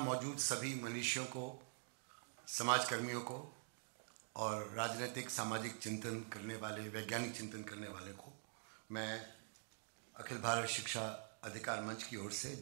सभी मनीषियों को, समाजकर्मियों को और राजनीतिक सामाजिक चिंतन करने वाले, वैज्ञानिक चिंतन करने वाले को मैं अखिल भारत शिक्षा अधिकार मंच की ओर से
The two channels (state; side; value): silent; left; digital silence